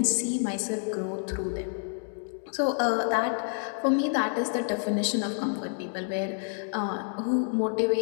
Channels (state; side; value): silent; right; 59 dB below the other